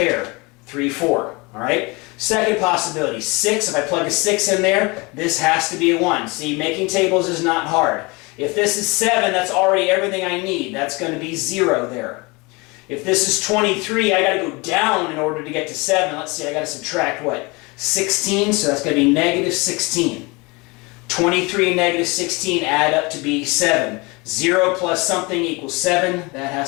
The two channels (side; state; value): right; quieter; 26.4 dB